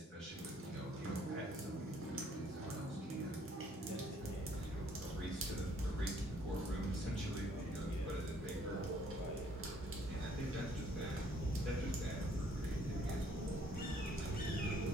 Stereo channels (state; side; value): normal; both; correlation 0.64